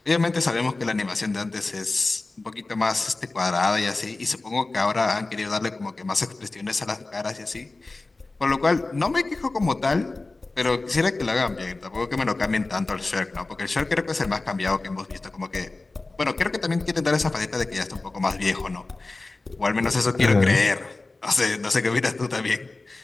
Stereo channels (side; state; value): right; quieter; 3.3 dB